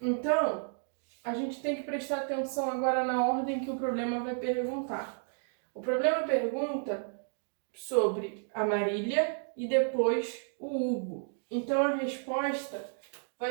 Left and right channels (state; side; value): silent; left; digital silence